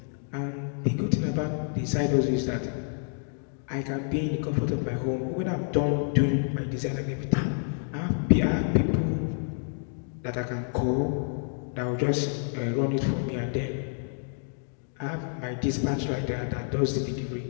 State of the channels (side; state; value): right; silent; 59 dB below the other